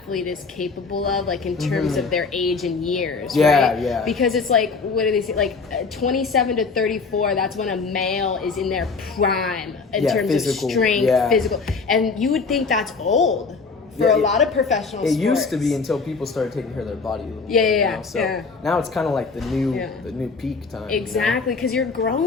is capable of, like in terms of their age and years, right? Because it's like, what do they say? Like 27 to 34, that's when a male is in their prime in terms of strength, physical. And you would think that's old for a lot of professional sports. It used to be until people started taking care of their body a little bit. You know? So now it's kind of like the new peak time. Exactly, because you're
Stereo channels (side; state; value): right; quieter; 4.6 dB